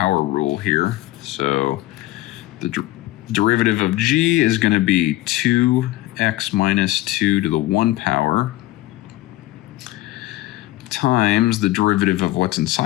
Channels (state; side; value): quieter; right; 17.1 dB